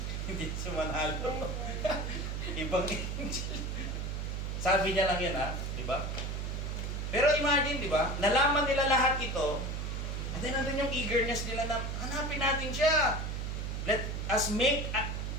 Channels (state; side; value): noise; right; hum, 3 dB below the sound